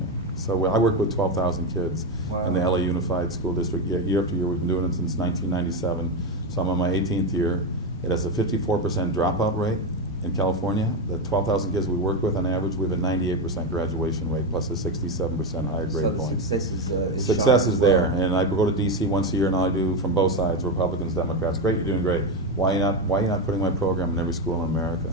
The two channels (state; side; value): normal; both; correlation 0.11